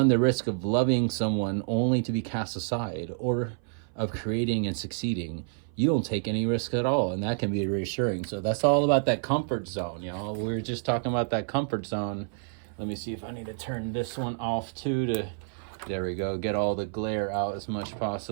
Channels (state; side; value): silent; left; 57 dB below the other